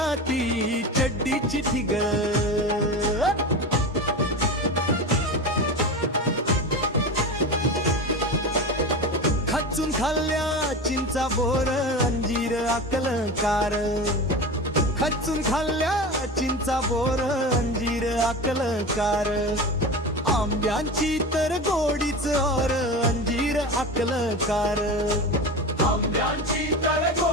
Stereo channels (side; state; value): both; normal; correlation 0.27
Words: ती चड्डीची ठिगळ. खचून खाल्ल्या चिंचा बोर अंजीर अकलकार. खचून खाल्ल्या चिंचा बोर अंजीर अकलकार. आंब्यांची तर गोडीच और अंजीर अकलकार. आंब्यांची तर